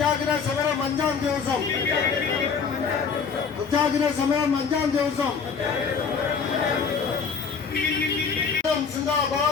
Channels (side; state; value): right; quieter; 5.8 dB